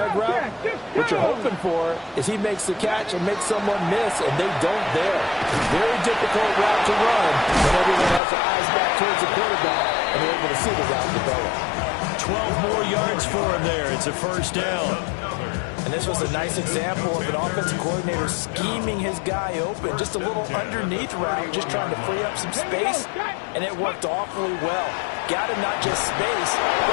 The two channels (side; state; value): right; drops out; at 8.2 s